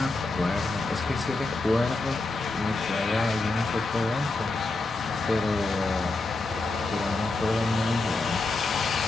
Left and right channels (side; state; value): right; quieter; 3.3 dB